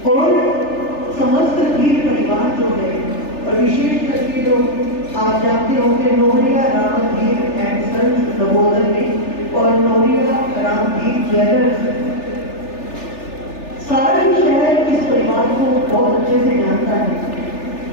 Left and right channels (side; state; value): right; late; 3.4 ms